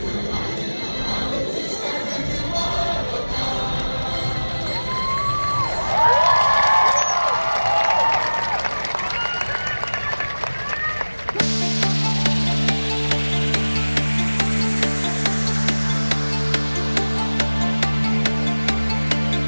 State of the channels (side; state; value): both; inverted; correlation -1.00